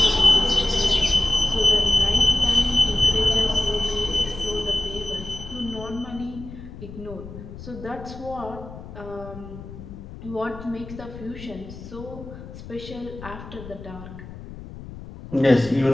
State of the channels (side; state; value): left; noise; rumble, 13 dB below the sound